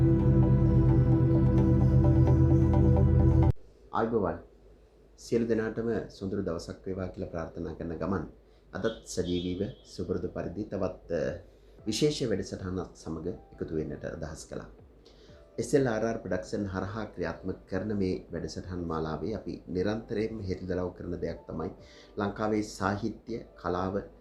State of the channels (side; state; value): both; identical; correlation 1.00